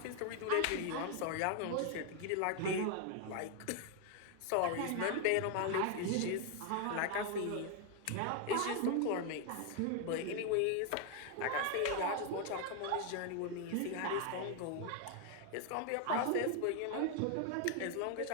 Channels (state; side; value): different; both; correlation 0.01